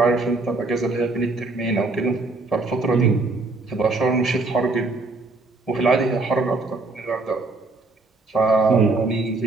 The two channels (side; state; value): left; quieter; 3.4 dB